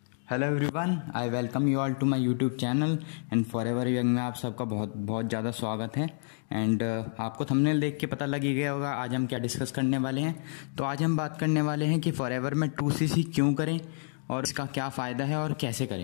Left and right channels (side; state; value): right; silent; digital silence